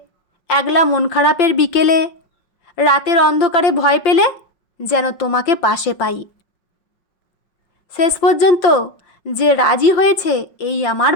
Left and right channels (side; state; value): right; late; 5.5 ms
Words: একলা মন খারাপের বিকেলে, রাতের অন্ধকারে ভয় পেলে যেন তোমাকে পাশে পাই। শেষ পর্যন্ত যে রাজি হয়েছে এই আমার